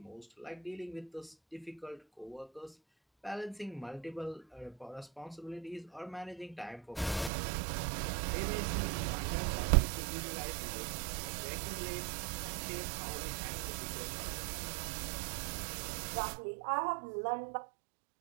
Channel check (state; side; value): drops out; left; at 7.3 s